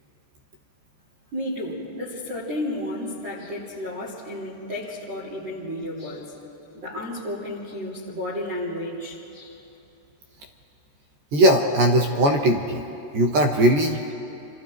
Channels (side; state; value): left; late; 14 ms